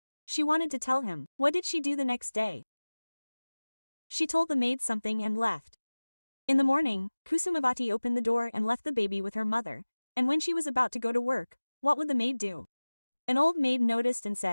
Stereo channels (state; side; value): inverted; both; correlation -1.00